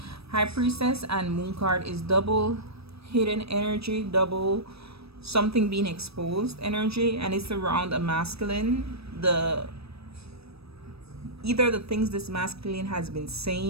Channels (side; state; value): left; late; 0.78 ms